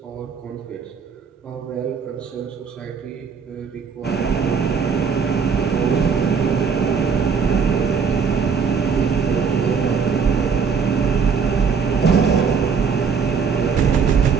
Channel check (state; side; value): quieter; left; 6.0 dB